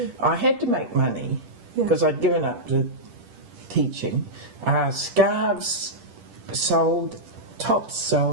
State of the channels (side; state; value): left; late; 10 ms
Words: I had to make money because I'd given up to teaching. Scarves sold, tops